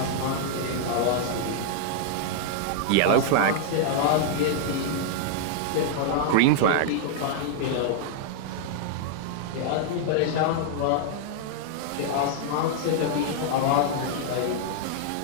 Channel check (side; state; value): both; different; correlation -0.01